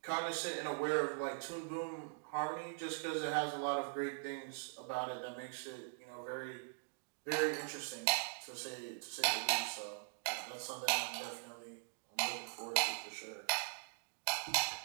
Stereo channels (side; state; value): left; silent; digital silence